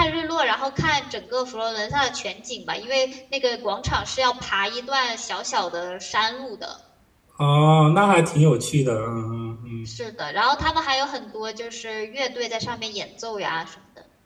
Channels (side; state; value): both; identical; correlation 1.00